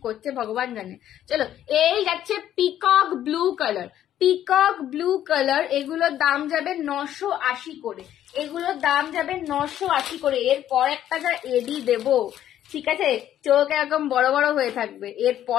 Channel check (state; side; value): quieter; right; 11.5 dB